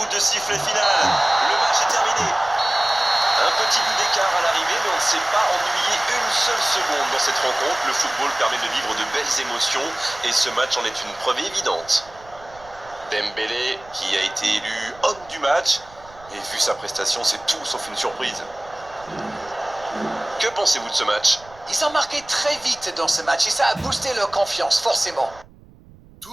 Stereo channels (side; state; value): right; noise; rumble, 24 dB below the sound